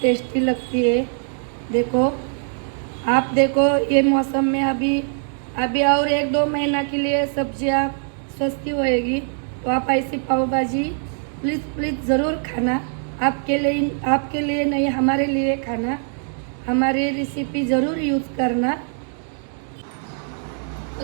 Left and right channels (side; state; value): left; silent; digital silence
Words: टेस्टी लगती है। देखो आप देखो ये मौसम में अभी और 1-2 महीना के लिए सब्जियां सस्ती होएगी। तो आप ऐसी पाव भाजी प्लीज़ ज़रूर खाना। आपके लिए नहीं, हमारे लिए खाना। हमारी रेसिपी ज़रूर यूज़ करना।